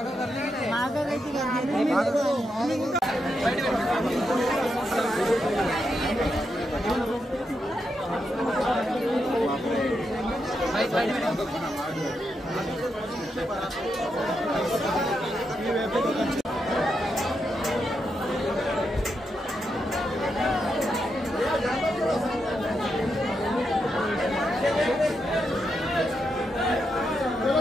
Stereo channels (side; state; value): both; normal; correlation 0.83